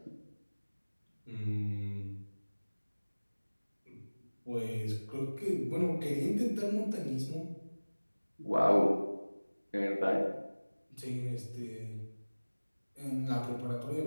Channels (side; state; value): both; inverted; correlation -1.00